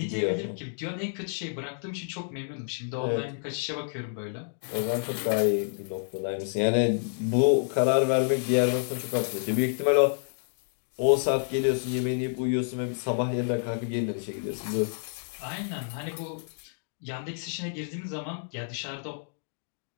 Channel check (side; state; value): right; silent; digital silence